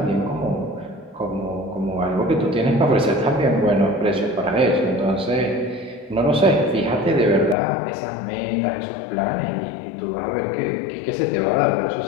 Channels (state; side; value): drops out; right; at 7.6 s